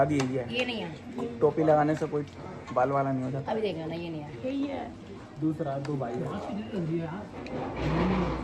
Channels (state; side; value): identical; both; correlation 1.00